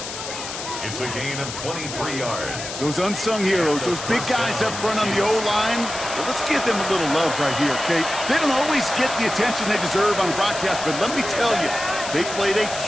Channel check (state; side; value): noise; left; hiss, 8 dB below the sound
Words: It's a gain of 23 yards. Those unsung heroes, those big guys up front on the O-line, well, let's give them a little love right here, Kate. They don't always get the attention they deserve on broadcast, but let me tell you, they played a